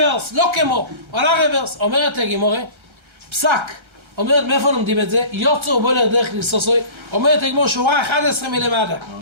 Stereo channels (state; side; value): late; left; 1.3 ms